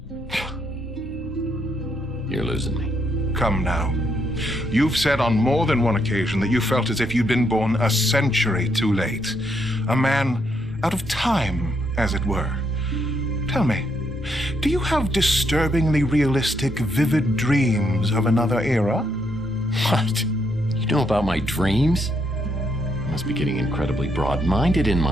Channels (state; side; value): normal; both; correlation 0.76